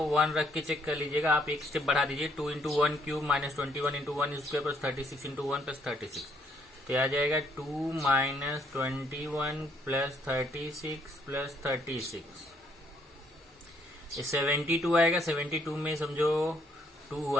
1 रख के चेक कर लीजिएगा। आप एक स्टेप बढ़ा दीजिए, 2 × 1³ - 21 × 1² प्लस 36 × 1 प्लस 36 तो आ जाएगा 2 - 21 प्लस 36 प्लस 36, ये 72 आएगा। 72 में समझो 2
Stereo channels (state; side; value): normal; both; correlation 0.67